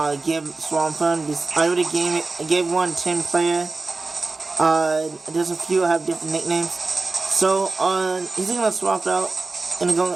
give Swampert. I already gave one 10 player. There's a few that have different nicknames. So he's gonna swap out. Gonna go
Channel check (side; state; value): left; quieter; 3.7 dB